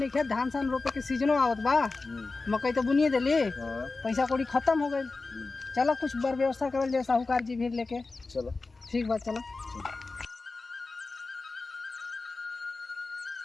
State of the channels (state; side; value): quieter; right; 3.7 dB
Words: खे, धान सान रोपे के सीजनो आवत बा, मकई तो बुनिए देली, पैसा कौड़ी खत्म हो गई। चलो कुछ बर व्यवस्था करल जाए, साहूकार जी भी लेके। चलो ठीक बात, चलो।